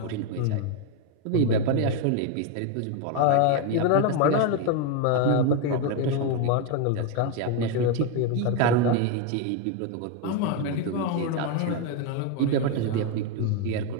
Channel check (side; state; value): both; different; correlation 0.01